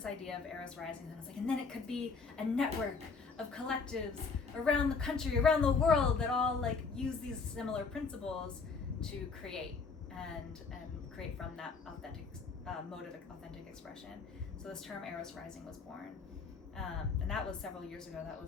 idea of Eros Rising, and I was like, and then it could be a network of collectives around the country, around the world, that all like use these similar principles to create and create from that authentic mode of authentic expression. So this term Eros Rising was born. And that was several years ago. That was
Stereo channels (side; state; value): right; quieter; 4.9 dB